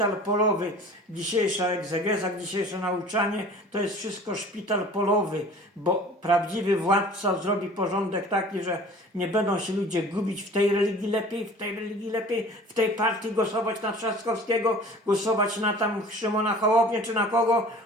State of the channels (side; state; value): both; normal; correlation 0.45